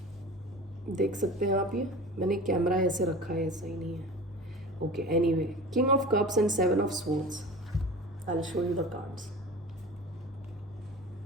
देख सकते हैं आप, ये मैंने कैमरा ऐसे रखा है, सही नहीं है. Okay, anyway, king of cups and seven of swords. I will show you the cards.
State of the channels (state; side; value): normal; both; correlation 0.36